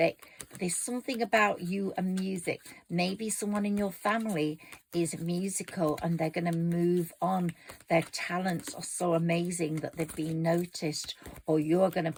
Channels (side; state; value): both; identical; correlation 1.00